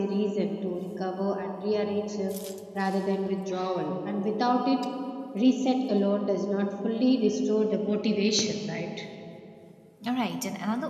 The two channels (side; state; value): both; identical; correlation 1.00